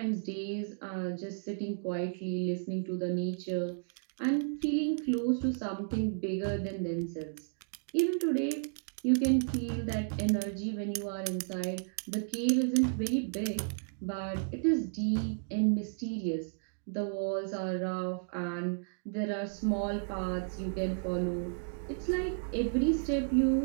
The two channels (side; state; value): left; silent; digital silence